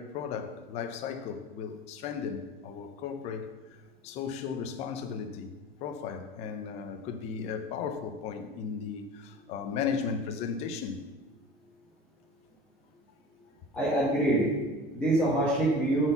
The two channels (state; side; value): normal; both; correlation 0.38